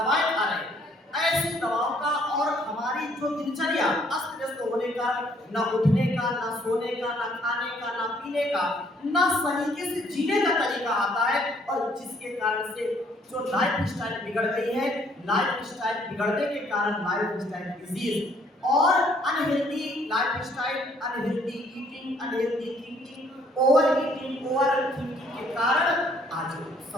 खा रहे हैं, ऐसी दवाओं का और हमारी जो दिनचर्या अस्त व्यस्त होने का, न उठने का, न सोने का, न खाने का, न पीने का, न तरीके से जीने का तरीका आता है, और जिसके कारण से जो लाइफ स्टाइल बिगड़ गई है, लाइफ स्टाइल बिगड़ने के कारण लाइफ स्टाइल डिजीज और unhealthy life style, unhealthy eating, unhealthy thinking, over eating, over thinking के कारण आज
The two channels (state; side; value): normal; both; correlation 0.64